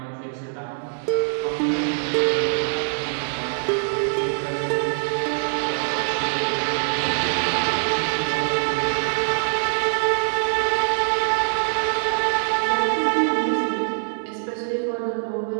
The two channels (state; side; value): silent; left; 63 dB below the other